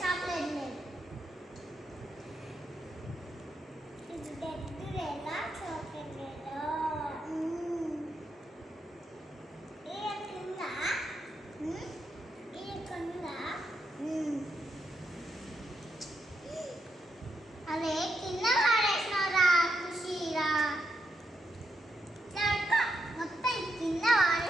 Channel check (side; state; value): both; normal; correlation 0.82